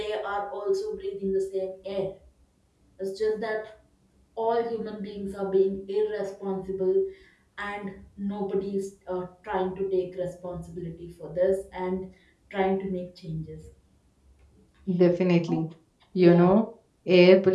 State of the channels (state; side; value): identical; both; correlation 1.00